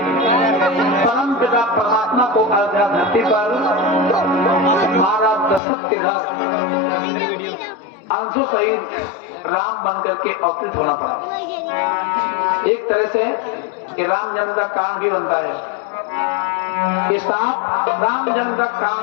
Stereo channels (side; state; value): right; drops out; at 5.6 s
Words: पिता परमात्मा को अयोध्या धरती पर महाराज दशरथ के घर अंशों सहित राम बन करके अवतरित होना पड़ा। एक तरह से ये राम जन्म का कारण भी बनता है, ये सांप राम जन्म का कारण